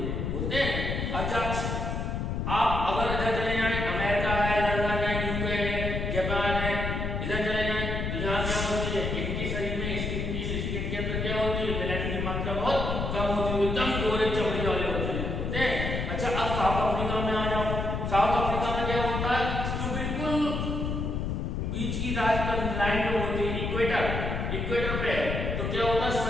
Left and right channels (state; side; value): noise; left; rumble, 2 dB below the sound